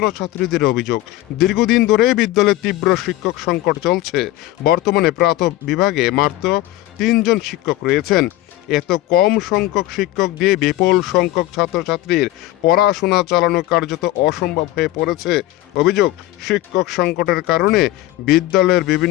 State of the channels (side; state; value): right; quieter; 16.0 dB